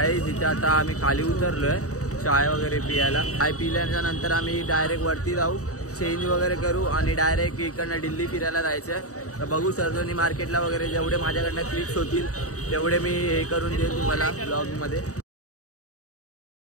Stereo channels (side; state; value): right; late; 0.66 ms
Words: तिथे आता आम्ही खाली उतरलोय चाय वगैरे पियाला. चाय पिल्याच्या नंतर आम्ही डायरेक्ट वरती जाऊ चेंज वगैरे करू आणि डायरेक्ट इकडनं दिल्ली फिरायला जायचं. तर बघू सरोजिनी मार्केटला वगैरे जेवढे माझ्याकडनं क्लिप्स होतील तेवढे मी हे करून देईन तुम्हाला ब्लॉगमध्ये.